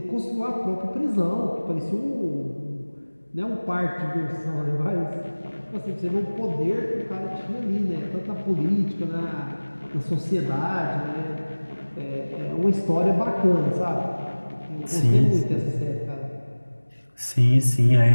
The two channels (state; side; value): inverted; both; correlation -1.00